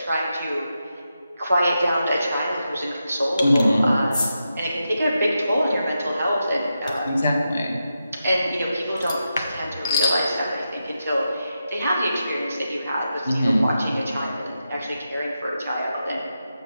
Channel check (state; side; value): inverted; both; correlation -0.87